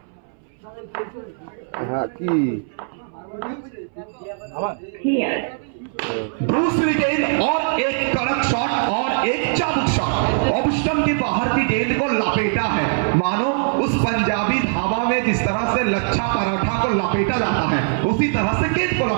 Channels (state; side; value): silent; left; 63 dB below the other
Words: दूसरी गेंद और एक कड़क शॉट और एक चाबुक शॉट। ऑफ स्टंप के बाहर की गेंद को लपेटा है, मानो उस पंजाबी ढाबा में जिस तरह से लच्छा पराठा को लपेटा जाता है उसी तरह से गेंद को